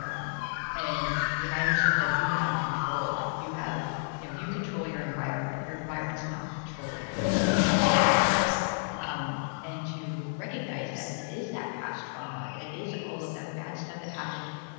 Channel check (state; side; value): silent; right; digital silence